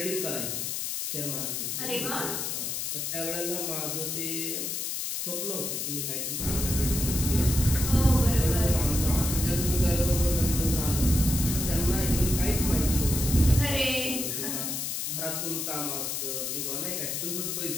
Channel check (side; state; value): left; noise; hiss, 2 dB below the sound